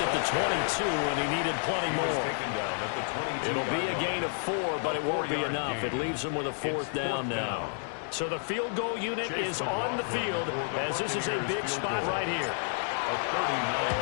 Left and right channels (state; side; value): silent; right; 58 dB below the other